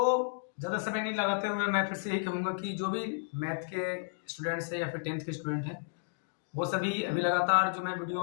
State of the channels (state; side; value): silent; right; digital silence